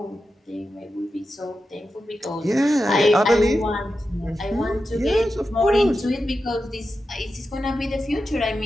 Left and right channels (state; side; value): normal; both; correlation 0.90